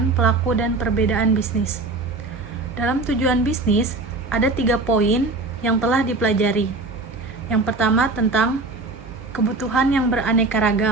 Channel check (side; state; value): left; quieter; 3.4 dB